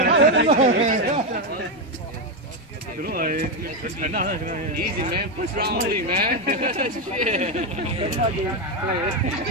Đúng rồi. Easy man, push round only man.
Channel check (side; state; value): both; normal; correlation 0.07